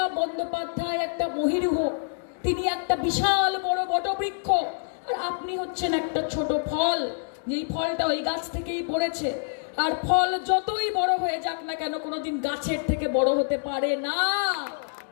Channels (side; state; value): right; silent; digital silence